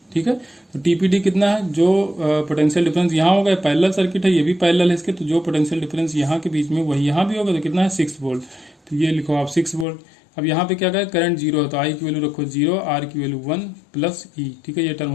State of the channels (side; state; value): right; drops out; at 9.9 s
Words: ठीक है। तो टीपीडी कितना है, जो पोटेंशियल डिफरेंस यहाँ होगा, पैरेलल सर्किट है, ये भी पैरेलल है इसके, तो जो पोटेंशियल डिफरेंस यहाँ के बीच में वही यहाँ भी होगा, तो कितना है 6 वोल्ट। तो ये लिखो आप 6 वोल्ट। अब यहाँ पे क्या कहा, करंट 0 है तो आई की वैल्यू रखो 0, आर की वैल्यू 1 प्लस ई, ठीक है, ये टर्म